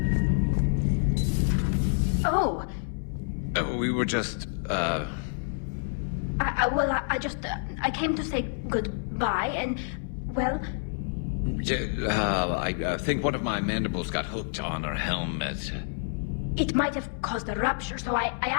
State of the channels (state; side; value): silent; right; 59 dB below the other